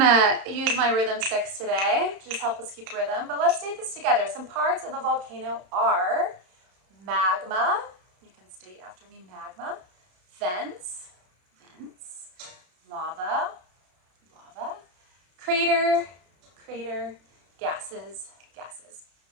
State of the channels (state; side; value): late; left; 32 ms